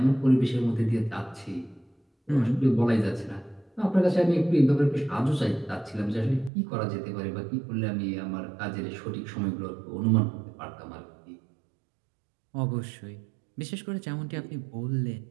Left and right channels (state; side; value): drops out; left; at 6.5 s